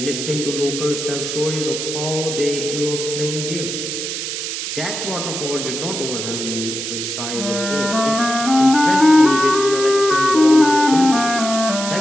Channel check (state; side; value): noise; right; hiss, 5 dB below the sound